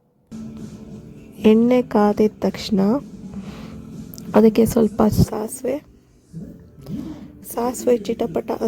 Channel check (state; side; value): identical; both; correlation 1.00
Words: ಎಣ್ಣೆ ಕಾದಿದ ತಕ್ಷಣ ಅದಕ್ಕೆ ಸ್ವಲ್ಪ ಸಾಸಿವೆ ಚಿಟಪಟ